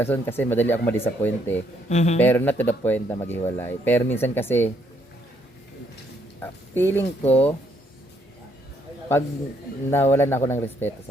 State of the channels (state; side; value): normal; both; correlation 0.71